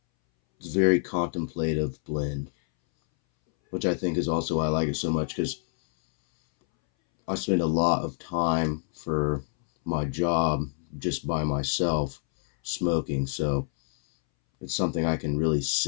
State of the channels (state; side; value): silent; right; 60 dB below the other